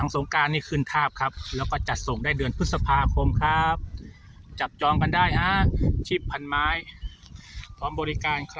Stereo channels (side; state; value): both; identical; correlation 1.00